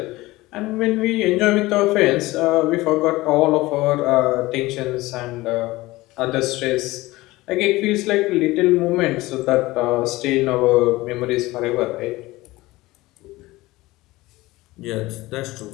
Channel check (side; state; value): right; quieter; 19.5 dB